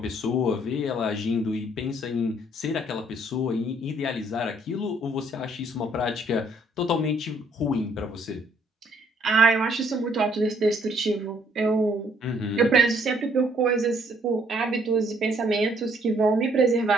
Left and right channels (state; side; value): normal; both; correlation 0.65